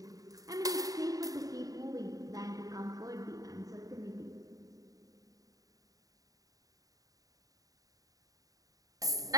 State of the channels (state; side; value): late; left; 0.17 ms